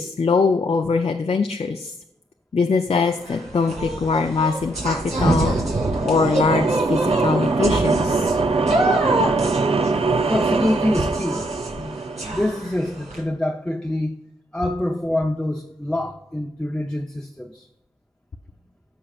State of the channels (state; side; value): normal; both; correlation 0.73